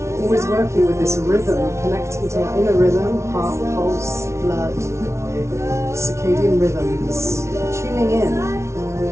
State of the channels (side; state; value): left; late; 0.13 ms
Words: Always working with this rhythm, connecting to our inner rhythm, heart, pulse, blood. Circadian rhythms, tuning in